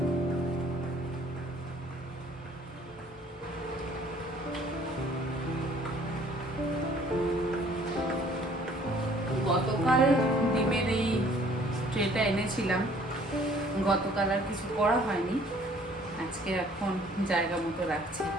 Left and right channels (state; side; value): normal; both; correlation 0.57